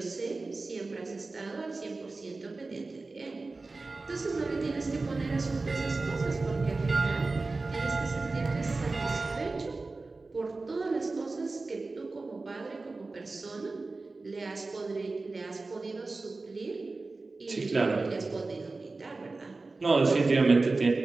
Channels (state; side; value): quieter; left; 3.5 dB